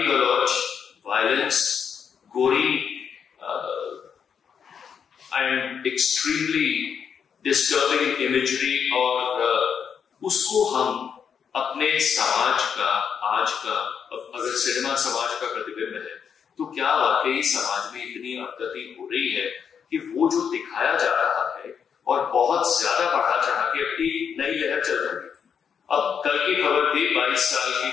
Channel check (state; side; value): quieter; right; 7.2 dB